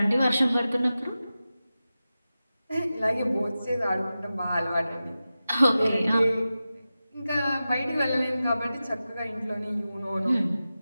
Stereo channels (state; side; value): inverted; both; correlation -0.94